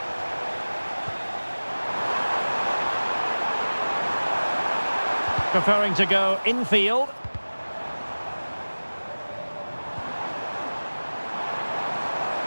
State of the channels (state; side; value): inverted; both; correlation -1.00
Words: Preferring to go infield.